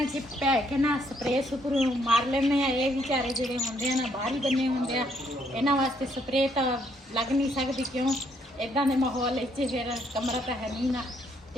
'ਚ ਪੈ ਕੇ ਨਾ ਸਪਰੇਅ ਸੁਪਰੂ ਮਾਰ ਲੈਂਦੇ ਆ। ਇਹ ਵਿਚਾਰੇ ਜਿਹੜੇ ਹੁੰਦੇ ਆ ਨਾ ਬਾਹਰ ਹੀ ਬੰਨੇ ਹੁੰਦੇ ਆ, ਇਹਨਾਂ ਵਾਸਤੇ ਸਪਰੇਅ ਤਾਂ ਲੱਗ ਨਹੀਂ ਸਕਦੀ, ਕਿਉਂ ਇਦਾਂ ਦੇ ਮਾਹੌਲ ਵਿੱਚ ਫਿਰ ਕਮਰਾ ਤਾਂ ਹੈ ਨਹੀਂ ਨਾ।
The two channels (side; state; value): both; normal; correlation 0.70